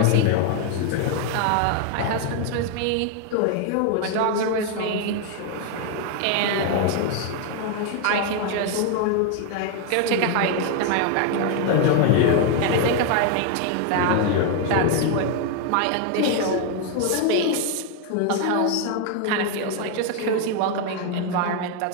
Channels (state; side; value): different; both; correlation 0.01